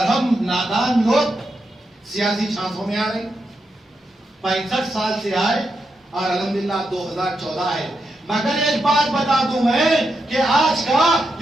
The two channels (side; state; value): both; normal; correlation 0.85